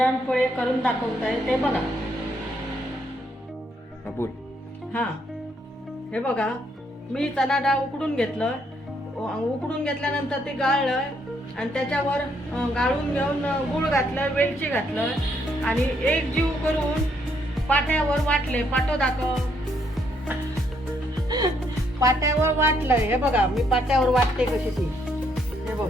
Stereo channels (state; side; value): normal; both; correlation 0.72